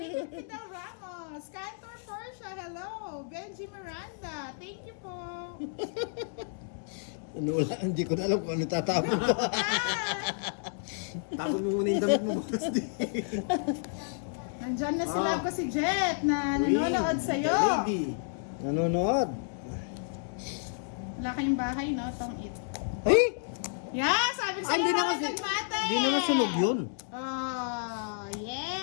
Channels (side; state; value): right; silent; digital silence